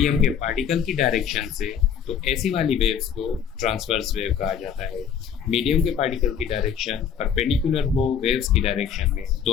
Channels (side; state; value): right; quieter; 7.9 dB